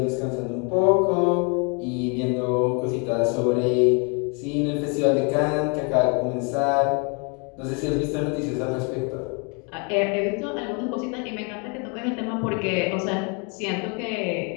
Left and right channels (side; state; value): right; quieter; 34.6 dB